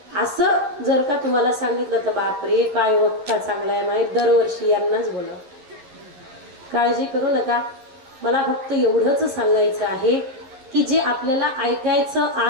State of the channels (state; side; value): late; left; 11 ms